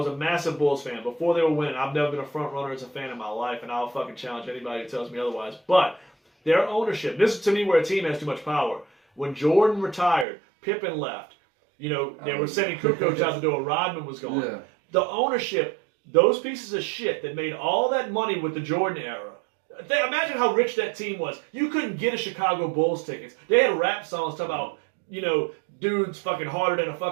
a massive Bulls fan. Before they were winning, I've never been a front runner as a fan in my life, and I'll fucking challenge anybody who tells me otherwise. But their ownership, this is to me where a team has too much power. When Jordan retired, Pippen left. They were sending Kukoc out the door. Rodman was gone. Yeah. The ownership, those pieces of shit that made all that money with the Jordan era. Imagine how rich that team was. You couldn't get a Chicago Bulls tickets. They had rap songs talking about, dudes fucking harder than a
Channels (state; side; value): drops out; left; at 10.2 s